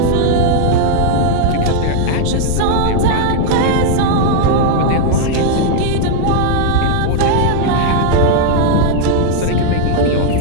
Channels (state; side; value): different; both; correlation 0.00